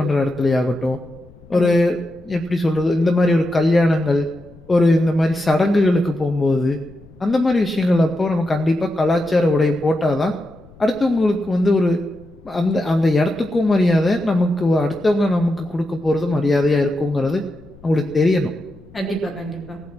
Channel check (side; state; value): left; noise; rumble, 24 dB below the sound